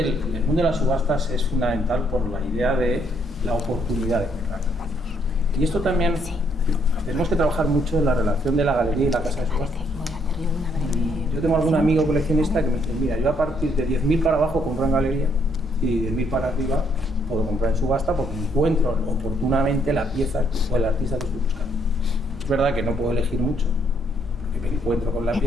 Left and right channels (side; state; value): both; normal; correlation 0.70